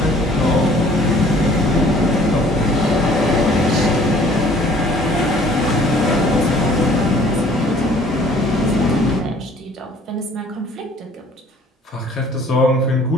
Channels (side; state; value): both; normal; correlation 0.55